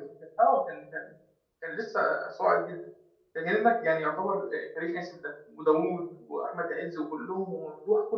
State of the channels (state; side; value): identical; both; correlation 1.00